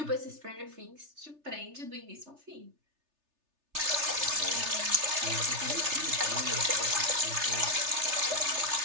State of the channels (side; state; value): left; late; 3.3 ms